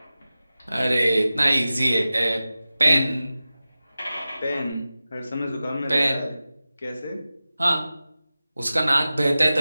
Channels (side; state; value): both; inverted; correlation -0.95